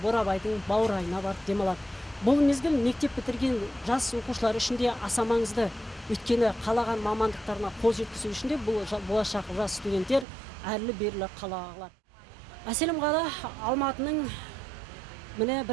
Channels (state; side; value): drops out; left; at 10.2 s